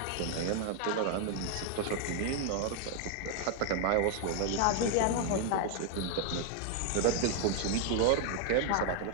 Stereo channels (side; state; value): both; different; correlation 0.01